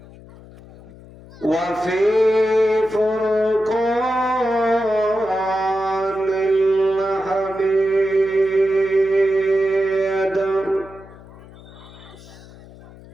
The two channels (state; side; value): noise; left; hum, 20 dB below the sound